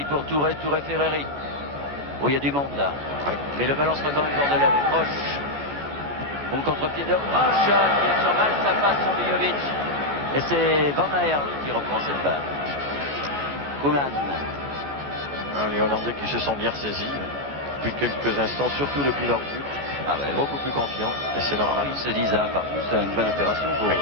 pour Touré Ferreri. Oh, il y a du monde là. Mais le ballon sera quand même bordelais avec Roche. Bon contre-pied de Roche qui est sur mal, ça passe sur Vujovic. Et c'est Van Aerle qui reprend cette balle. Koeman. Les Hollandais qui se sont bien ressaisis depuis quelques instants, surtout depuis leur but. Ah ben, Beaucoup plus confiants, et c'est normal. Ils se disent un partout, c'est une bonne opération pour eux.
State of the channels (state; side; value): late; left; 14 ms